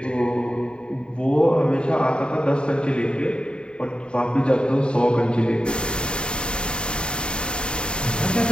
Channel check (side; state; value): right; late; 0.051 ms